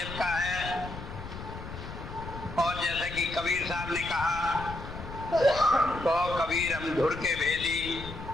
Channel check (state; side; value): noise; left; rumble, 10 dB below the sound